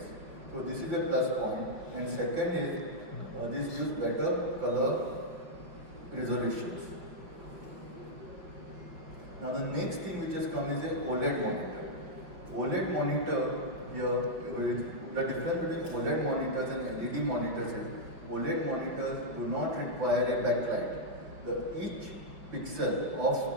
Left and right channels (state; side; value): late; left; 5.7 ms